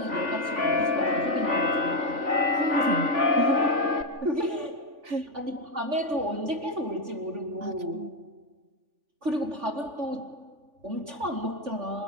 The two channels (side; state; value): left; late; 3.4 ms